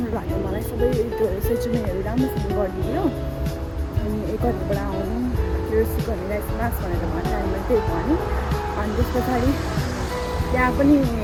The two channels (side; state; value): both; identical; correlation 1.00